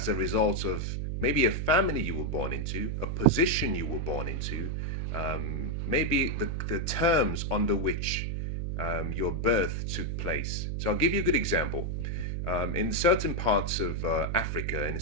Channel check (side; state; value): right; noise; hum, 2 dB below the sound